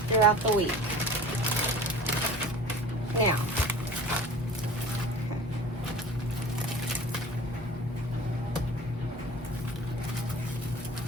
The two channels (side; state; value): both; normal; correlation 0.41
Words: throughout the week. Now,